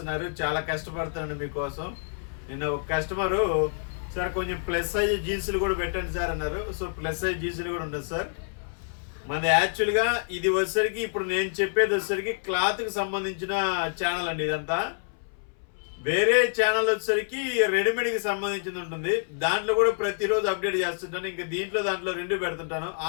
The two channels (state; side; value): silent; right; 60 dB below the other